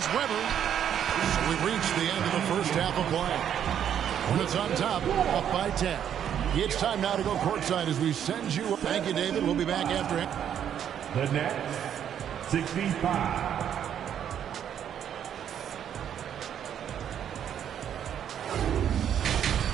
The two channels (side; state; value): left; quieter; 9.4 dB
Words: Weber. So we've reached the end of the first half of play. Hornets on top, up by 10. It's time now to go courtside as we send you. Thank you, David. We'll be back after it. The Nets, 65.